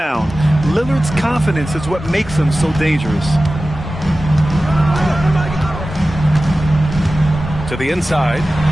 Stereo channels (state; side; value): normal; both; correlation 0.95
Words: Lillard's confidence is what makes him so dangerous. To the inside,